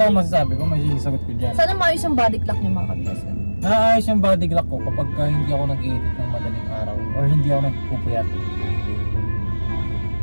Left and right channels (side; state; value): both; inverted; correlation -1.00